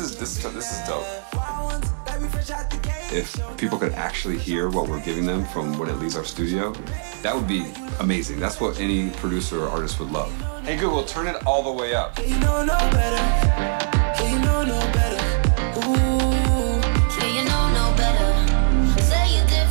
is dope. If people could actually hear what we're giving them from when it leaves our studio, that would be amazing. That's what any producer or artist would love. Hey Google, turn it all the way up. You know no better. You know no better. Ooh. Yeah, you know no better. Say you're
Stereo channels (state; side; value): silent; left; digital silence